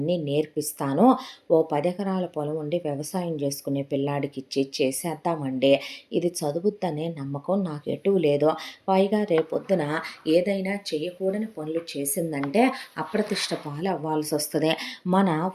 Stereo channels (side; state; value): both; identical; correlation 1.00